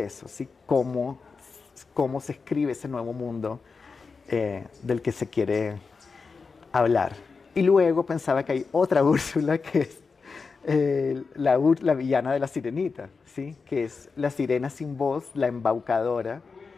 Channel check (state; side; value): quieter; right; 4.8 dB